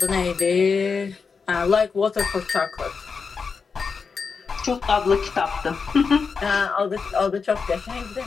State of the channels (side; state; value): right; quieter; 5.3 dB